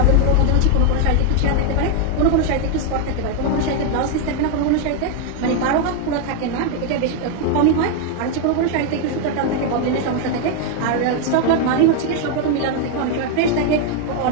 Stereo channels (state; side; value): different; both; correlation 0.00